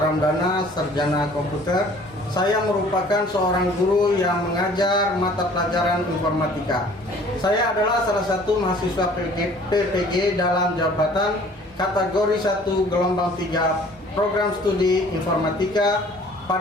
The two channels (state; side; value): normal; both; correlation 0.52